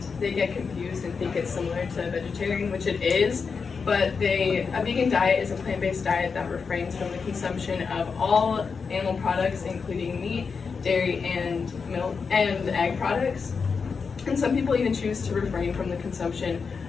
they get confused and think it's similar to vegetarian, which it is, but a vegan diet is a plant-based diet that refrains from the consumption of all animal products, including meat, dairy, and milk, and egg products. And some people even choose to refrain from the consumption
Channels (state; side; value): quieter; right; 5.4 dB